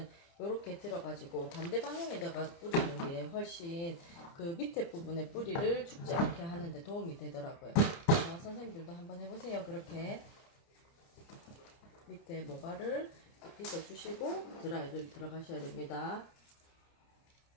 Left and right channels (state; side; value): late; right; 30 ms